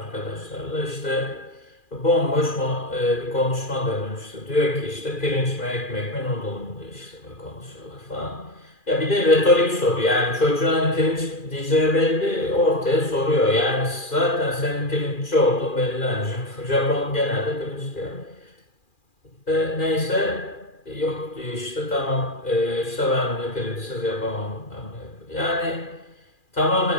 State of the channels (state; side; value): late; right; 2.4 ms